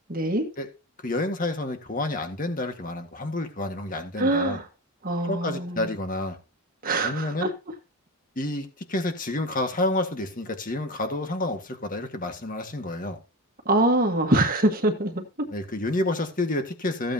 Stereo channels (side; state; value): both; normal; correlation 0.27